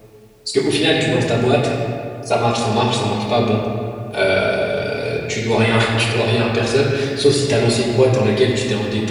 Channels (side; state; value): both; identical; correlation 1.00